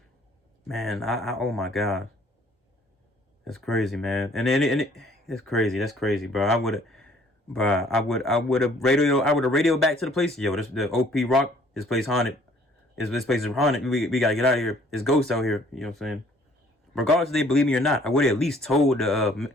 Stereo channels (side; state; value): both; normal; correlation 0.58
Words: Man, I oh my God, that's crazy, man. And it's crazy. That's crazy, bro. I would have radioed back to the place. Yo, the OP Rock, this place haunted. This place is haunted. We gotta get out of here. There's ghosts out here. You know what I'm saying? Regardless if they believe me or not, I would have at least told the